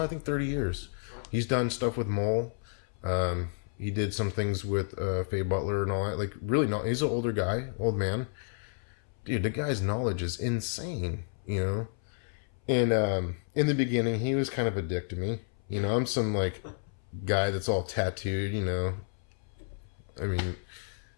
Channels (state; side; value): silent; right; 57 dB below the other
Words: I think 30 years. He's done stuff with Mole. He did some things with Faye Butler and all that. Like, really, he's an older guy, old man. Dude, the guy's knowledge is insane, you know? And in the beginning, he was kind of a dick to me. You know, I'm some, like, guy that's all tattooed, you know? I mean,